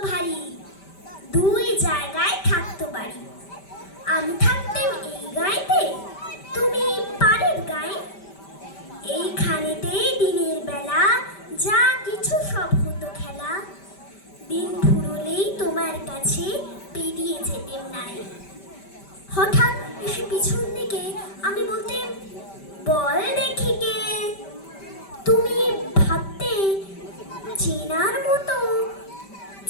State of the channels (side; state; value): right; late; 5.1 ms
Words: ভারী, দুই জায়গায় থাকতো বাড়ি। আমি থাকতেম এই গাঁয়েতে, তুমি পাড়ের গায়ে। এইখানেতেই দিনের বেলা যা কিছু সব হতো খেলা। দিন ফুরলেই তোমার কাছে পেরিয়ে যেতেম নাই। হঠাৎ এসে পিছন দিকে আমি বলতেম, বল দেখি কে। তুমি ভাবতে চেনার মতো,